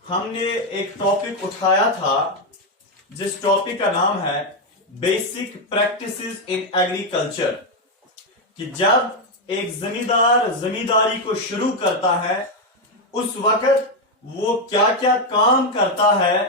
हमने एक टॉपिक उठाया था जिस टॉपिक का नाम है बेसिक प्रैक्टिसेस इन एग्रीकल्चर, कि जब एक जमींदार जमींदारी को शुरू करता है उस वक्त वो क्या क्या काम करता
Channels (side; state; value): both; normal; correlation 0.05